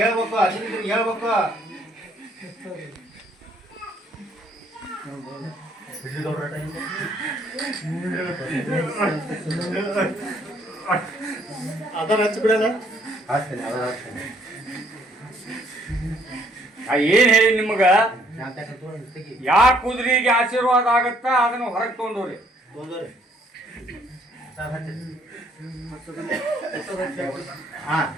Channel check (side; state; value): both; normal; correlation 0.65